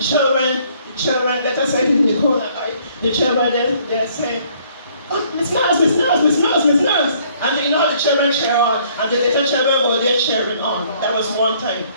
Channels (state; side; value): inverted; both; correlation -0.62